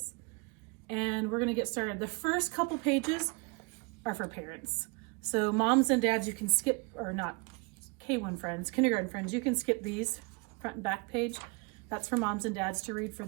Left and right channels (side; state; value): left; quieter; 31.0 dB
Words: and we're gonna get started. The first couple pages are for parents. So moms and dads, you can skip, or not, K1 friends, kindergarten friends, you can skip these front and back page. That's for moms and dads to read for